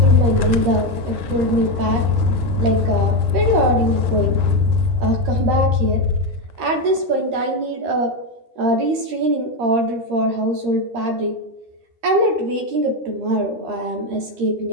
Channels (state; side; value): late; left; 13 ms